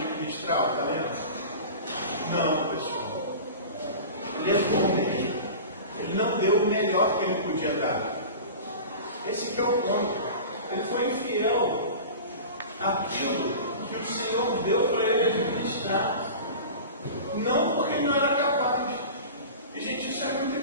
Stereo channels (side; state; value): both; inverted; correlation -0.34